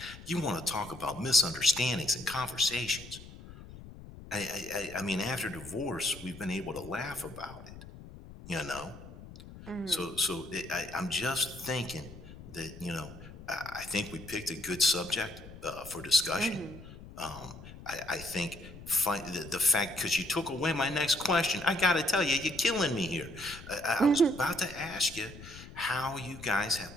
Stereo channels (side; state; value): left; noise; rumble, 16 dB below the sound